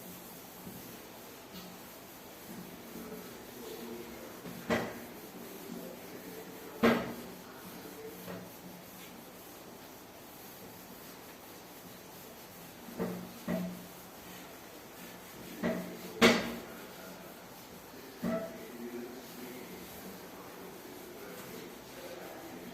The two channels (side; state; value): left; noise; hum, 29 dB below the sound